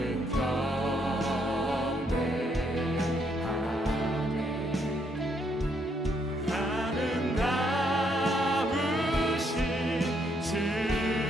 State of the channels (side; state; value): both; normal; correlation 0.73